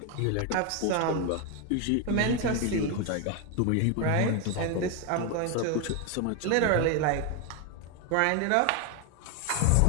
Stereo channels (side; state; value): both; different; correlation 0.01